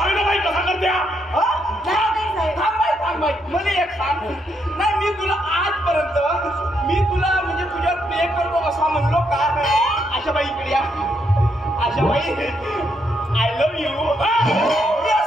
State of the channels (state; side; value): normal; both; correlation 0.77